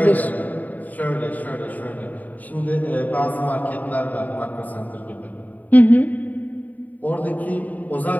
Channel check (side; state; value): right; late; 0.078 ms